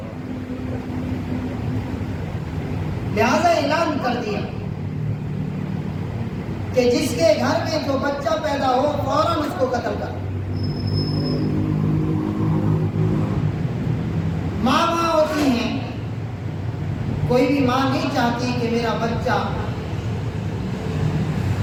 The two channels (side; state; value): both; identical; correlation 1.00